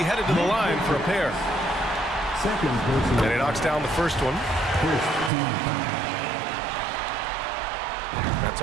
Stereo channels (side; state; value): left; drops out; at 5.3 s